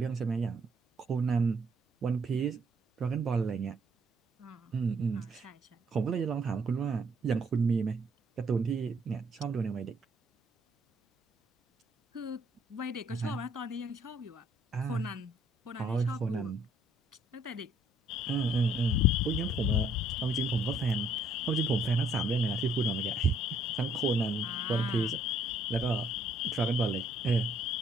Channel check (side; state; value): both; normal; correlation 0.65